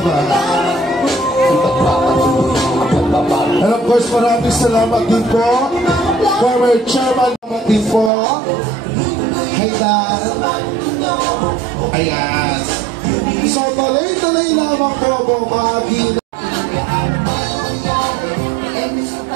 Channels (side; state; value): left; drops out; at 8.1 s